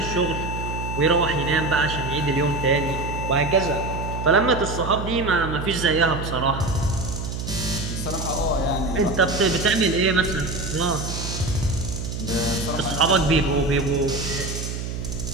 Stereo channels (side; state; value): right; noise; hum, 5 dB below the sound